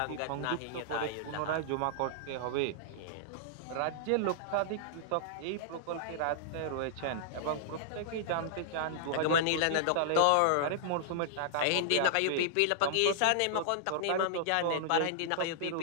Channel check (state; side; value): different; both; correlation -0.01